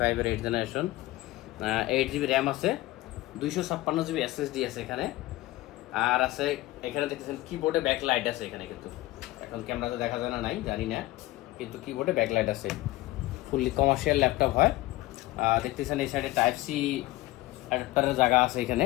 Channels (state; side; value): quieter; right; 18.2 dB